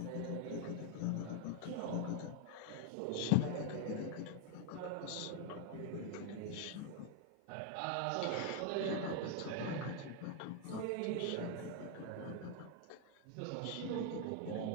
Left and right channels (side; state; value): both; different; correlation 0.00